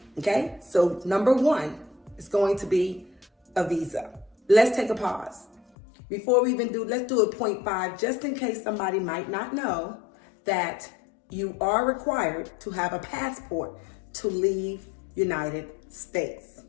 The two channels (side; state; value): right; drops out; at 5.6 s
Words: Okay, so number one is going to be a visa. Let's take a pause. Before we even let's do a 0.5, just in case somebody might not know that you are required to have a passport to leave United States,